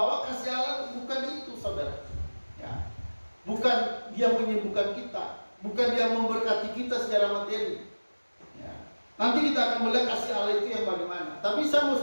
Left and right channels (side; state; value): both; inverted; correlation -1.00